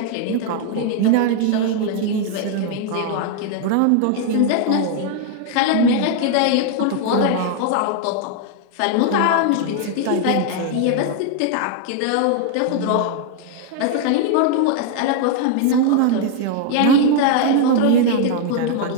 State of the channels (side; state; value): both; different; correlation 0.00